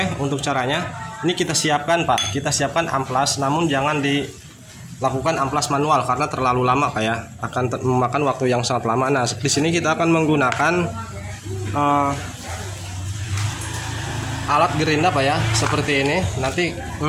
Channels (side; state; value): both; identical; correlation 1.00